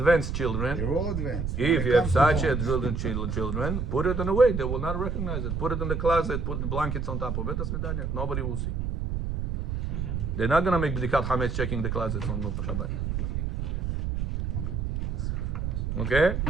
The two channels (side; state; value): right; noise; rumble, 2 dB below the sound